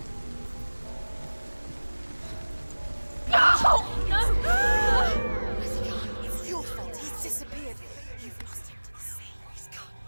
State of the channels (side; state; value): both; inverted; correlation -1.00